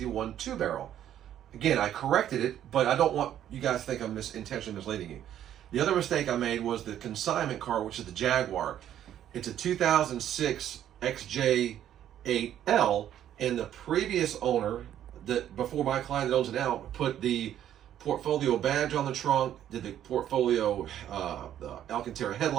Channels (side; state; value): left; quieter; 10.9 dB